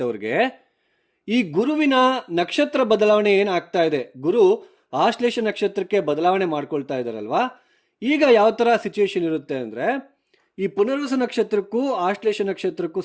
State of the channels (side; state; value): both; identical; correlation 1.00